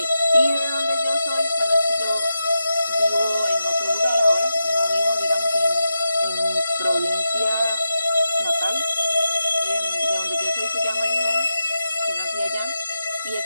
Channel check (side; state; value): both; inverted; correlation -0.88